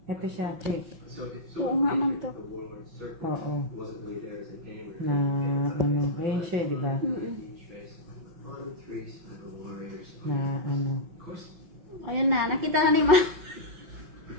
Ito siya, check. Oo nga, ma'am, to. The Warlord Circle Oo. wasn't really there as a game. Na ano. Ayun siya, di ba? Na ano. Ayun na, nakita na ni ma'am.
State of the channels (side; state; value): left; late; 5.8 ms